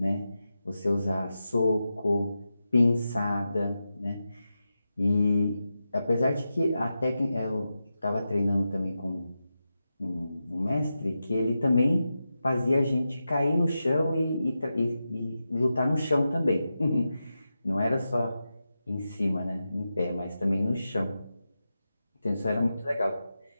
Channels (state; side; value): inverted; both; correlation -0.90